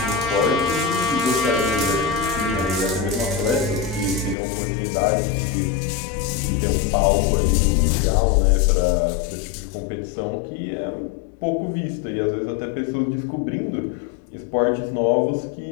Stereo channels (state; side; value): drops out; right; at 4.4 s